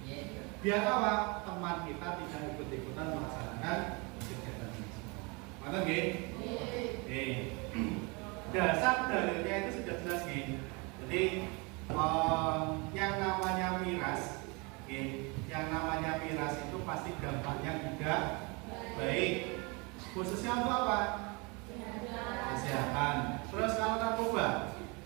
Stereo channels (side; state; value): left; quieter; 29.1 dB